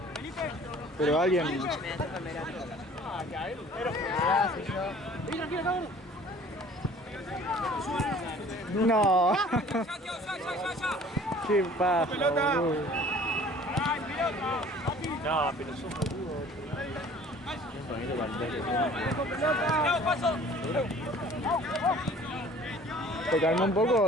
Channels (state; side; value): normal; both; correlation 0.50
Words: Pero alguien... Me toca en verano. No. Qué paja, boludo. No, pero son boludos. ¿Te calmó un poco